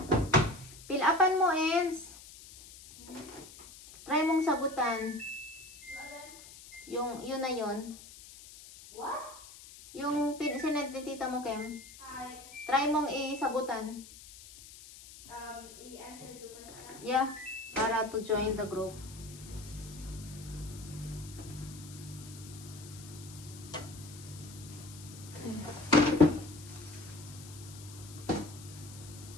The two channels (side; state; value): left; noise; hiss, 17 dB below the sound